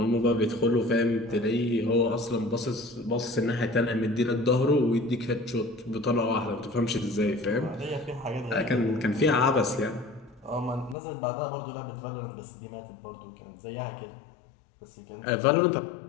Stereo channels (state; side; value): drops out; right; at 11.0 s